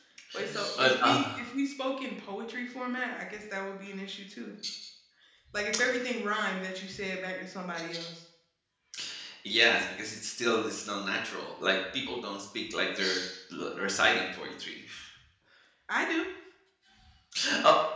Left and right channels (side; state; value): both; identical; correlation 1.00